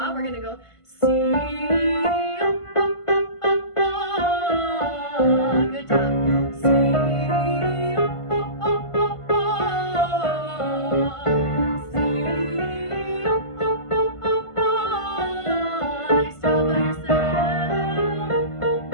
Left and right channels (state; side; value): late; right; 1.5 ms